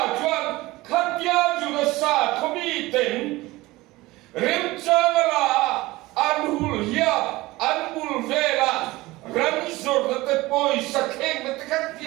chuan khát bia chú nó sa không bị tỉnh rem chang la anhul hiya anbul vela ramzor na te poi sakeng na te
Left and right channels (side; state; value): left; quieter; 19.8 dB